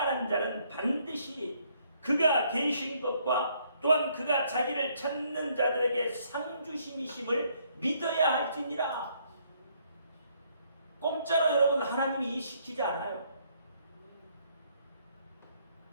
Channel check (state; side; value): inverted; both; correlation -0.68